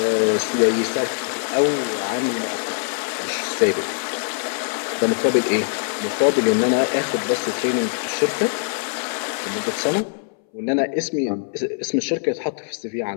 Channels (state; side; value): silent; right; 62 dB below the other